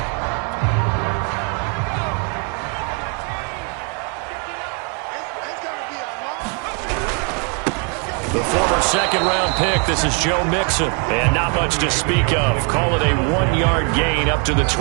The former second-round pick, this is Joe Mixon. And not much to speak of. Call it a 1-yard gain up to the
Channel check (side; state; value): left; quieter; 37.2 dB